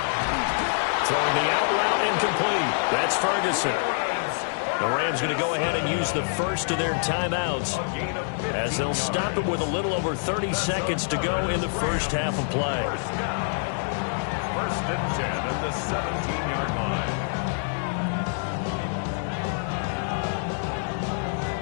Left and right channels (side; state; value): right; silent; digital silence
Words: Throwing the out route incomplete. That's Ferguson. The Rams going to go ahead and use the first of their timeouts as they'll stop it with a little over 30 seconds to go in the first half of play. 1st and 10 at the 17-yard line.